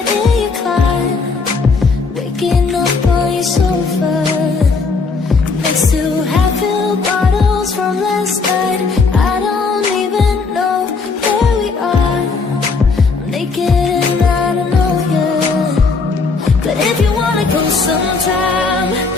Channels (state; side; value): quieter; right; 4.4 dB